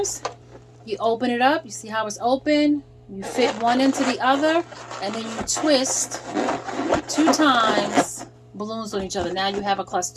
you open it up. You see how it's open? You fit one into the other, and then you twist 2 times balloons on each other. Now you have a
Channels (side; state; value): both; identical; correlation 1.00